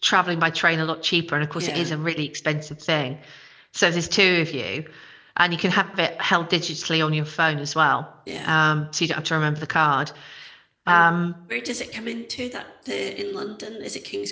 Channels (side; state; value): both; identical; correlation 1.00